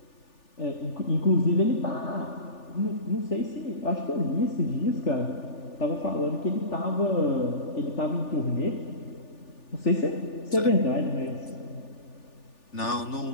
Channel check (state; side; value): late; right; 3.4 ms